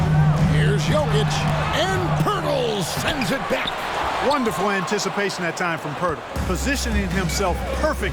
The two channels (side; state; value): both; identical; correlation 1.00